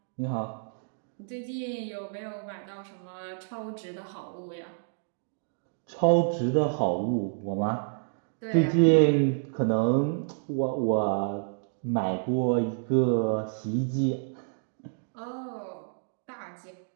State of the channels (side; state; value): left; silent; digital silence